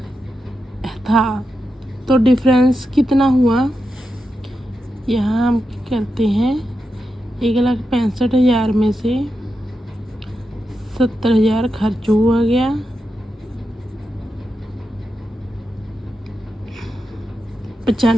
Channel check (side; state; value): both; normal; correlation 0.88